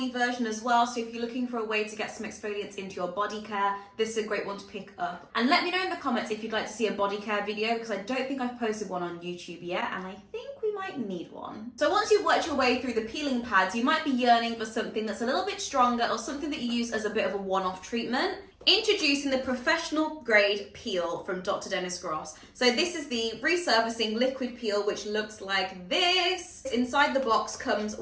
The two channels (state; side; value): identical; both; correlation 1.00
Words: version as well. So if you're looking for a way to get some exfoliants into your body care, this is a great one to pick up. And let me know in the comments if you'd like to see a body care video, because I don't think I've posted one on YouTube yet, and I think we might need one. So once you've worked your way through the peeling pads, you might be yearning for something that's a little bit stronger or something that you use as a bit of a one-off treatment. Introducing the professional grade peel from Dr. Dennis Gross. So this is the Resurfacing liquid peel, which looks like this. Inside the box comes